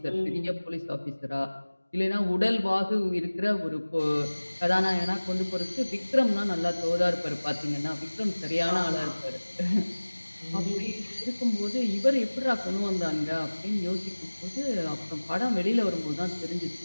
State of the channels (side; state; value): both; inverted; correlation -1.00